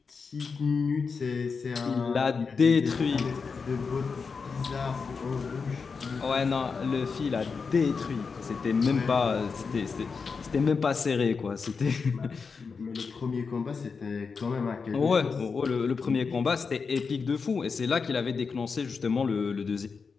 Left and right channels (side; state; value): right; quieter; 5.2 dB